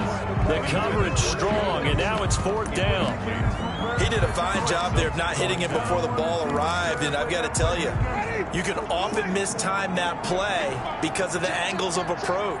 The coverage strong, and now it's 4th down. He did a fine job there of not hitting it before the ball arrived, and I've got to tell you, you can often mistime that play because of the angles of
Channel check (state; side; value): identical; both; correlation 1.00